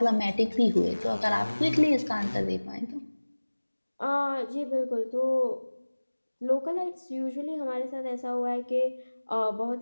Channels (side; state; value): both; inverted; correlation -1.00